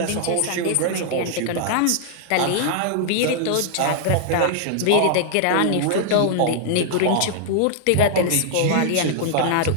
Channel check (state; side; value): different; both; correlation -0.01